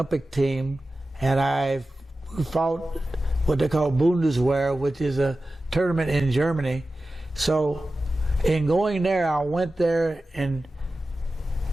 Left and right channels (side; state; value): both; normal; correlation 0.94